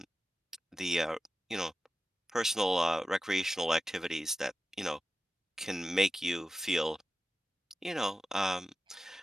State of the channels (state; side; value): normal; both; correlation 0.93